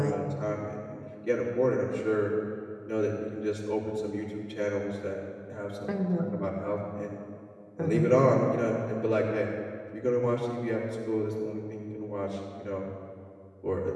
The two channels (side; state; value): both; identical; correlation 1.00